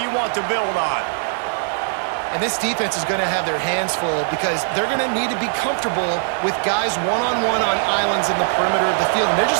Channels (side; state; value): left; silent; 65 dB below the other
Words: you want to build on. And this defense is going to have their hands full because they're going to need to be comfortable with guys one-on-one on islands in the perimeter of the field, and they're